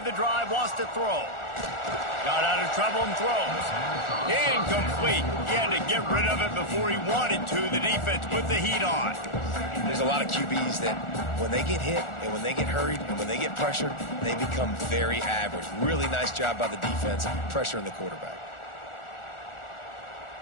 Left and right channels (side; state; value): right; late; 1.4 ms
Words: the drive, wants to throw. Got out of trouble and throws. Incomplete. He had to get rid of it before he wanted to. The defense put the heat on. There's a lot of QBs that when they get hit and when they get hurried and when they get pressured, they become very average. Really nice job by the defense pressuring the quarterback.